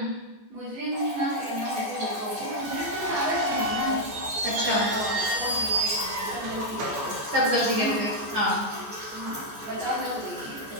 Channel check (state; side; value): late; left; 14 ms